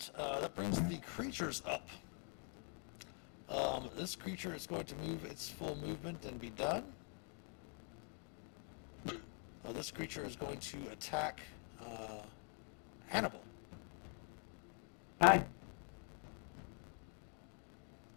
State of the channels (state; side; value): quieter; right; 37.8 dB